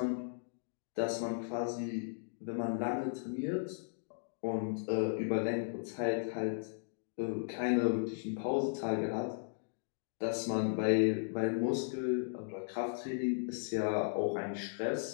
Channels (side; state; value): right; silent; digital silence